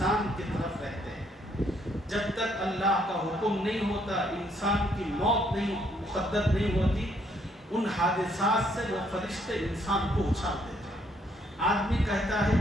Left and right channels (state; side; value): normal; both; correlation 0.70